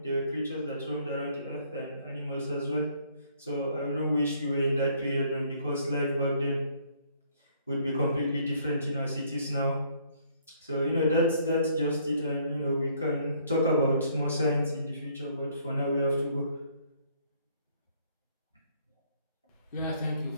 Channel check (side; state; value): both; inverted; correlation -0.64